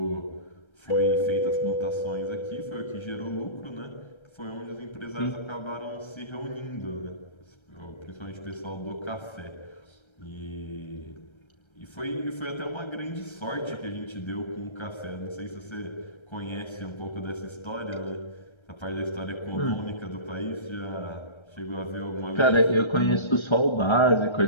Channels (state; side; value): late; right; 1.3 ms